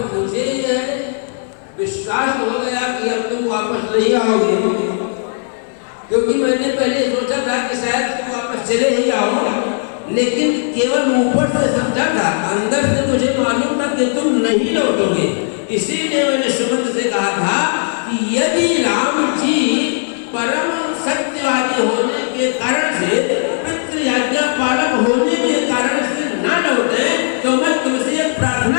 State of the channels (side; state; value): right; silent; digital silence